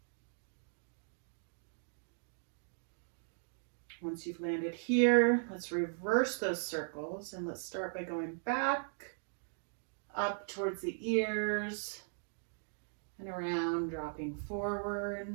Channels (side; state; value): left; silent; digital silence